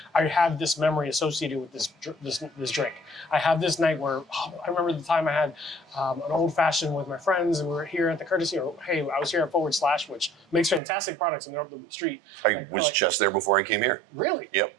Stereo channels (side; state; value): left; drops out; at 10.8 s